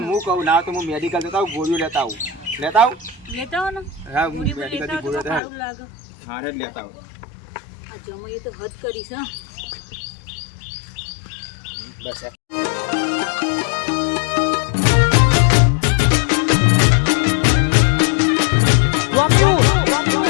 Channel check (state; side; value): drops out; right; at 5.4 s